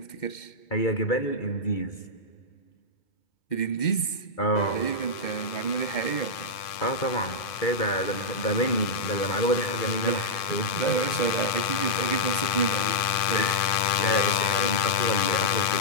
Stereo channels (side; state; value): right; late; 2.5 ms